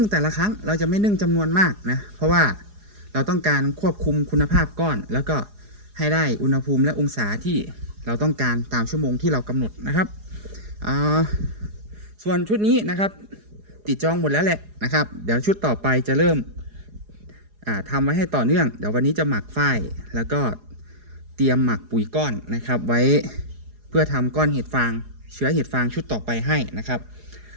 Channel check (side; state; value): left; late; 4.8 ms